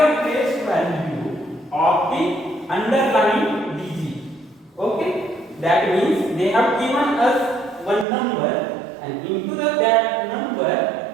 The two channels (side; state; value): left; drops out; at 8.1 s